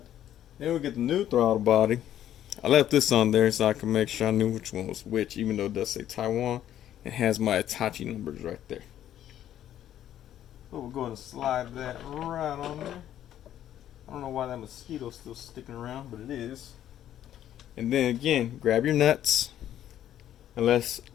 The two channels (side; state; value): right; quieter; 11.4 dB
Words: Then we get the new throttle body. I left this on there so I can make sure I knew which one was which, even though it does say Taiwan. It has my Hitachi numbers right there. So we'll go ahead and slide that right on there. I don't know why that mosquito's still sticking around, but it is. And then again, grab your nuts. Unless,